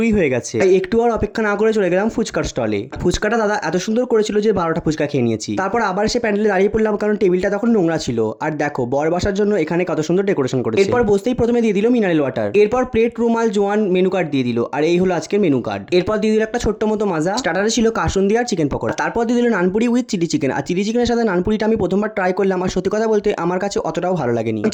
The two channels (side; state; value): both; identical; correlation 1.00